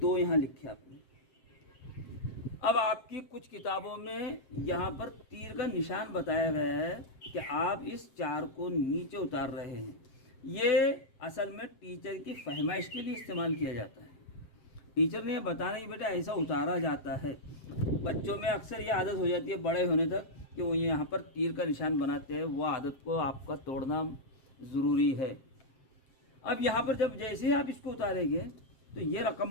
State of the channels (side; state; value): right; late; 7.6 ms